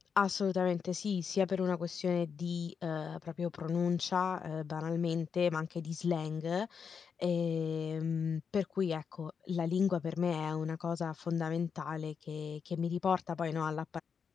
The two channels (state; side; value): quieter; right; 6.4 dB